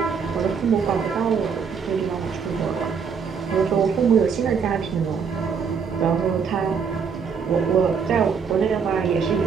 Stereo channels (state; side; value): quieter; left; 6.2 dB